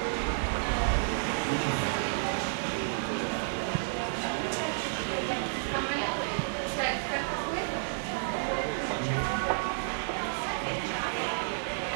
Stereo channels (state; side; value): silent; left; digital silence